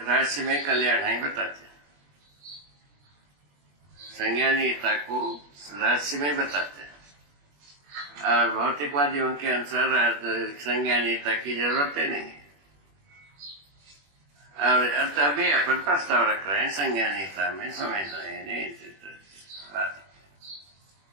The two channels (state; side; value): late; left; 21 ms